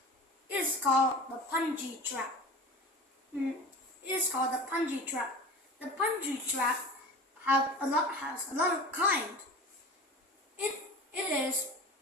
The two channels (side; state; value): both; normal; correlation 0.35